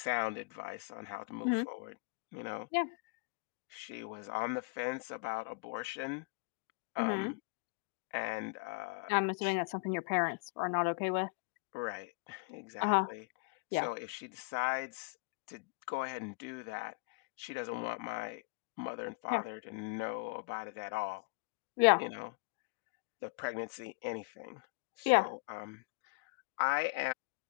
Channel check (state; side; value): quieter; right; 32.1 dB